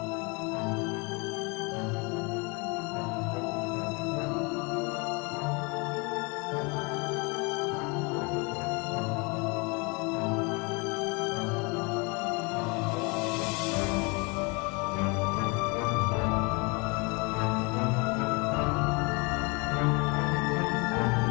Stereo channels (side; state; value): right; quieter; 29.6 dB